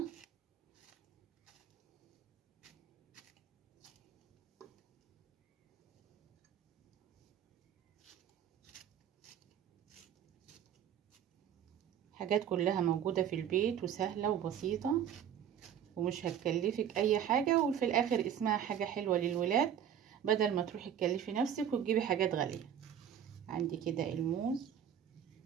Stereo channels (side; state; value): left; quieter; 9.3 dB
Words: حاجات كلها موجودة في البيت وسهلة وبسيطة ومش هتكلفك اي حاجة، وفي الاخر اسمها حاجة حلوة للولاد بدل ما تروحي تكلفي نفسك وتجيبي حاجات غالية. عندي كده الموز،